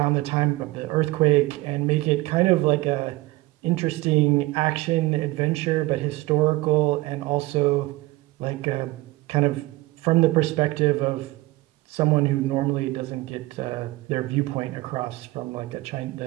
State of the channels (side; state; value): left; quieter; 19.8 dB